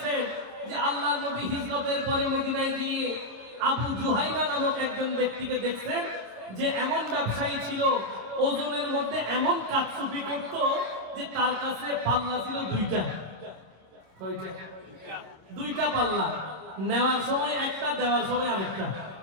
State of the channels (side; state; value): left; late; 26 ms